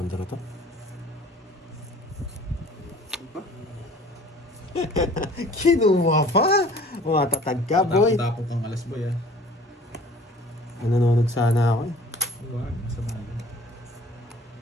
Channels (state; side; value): normal; both; correlation 0.49